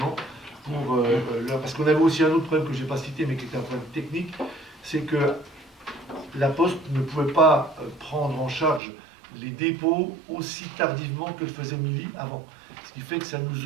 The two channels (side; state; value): left; drops out; at 8.8 s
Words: parce qu'on avait aussi un autre problème que je n'ai pas cité, mais qui était un problème technique, c'est que la Poste ne pouvait pas prendre en charge les dépôts aussi tardivement que le faisait Mili avant. Ce qui fait que ça